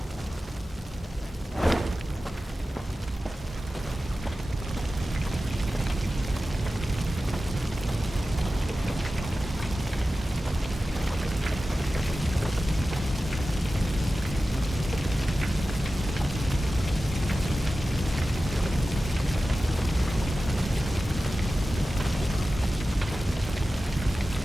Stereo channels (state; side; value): normal; both; correlation 0.94